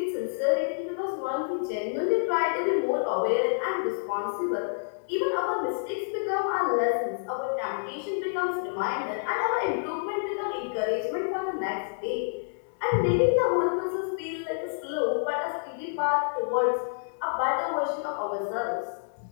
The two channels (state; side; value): silent; right; digital silence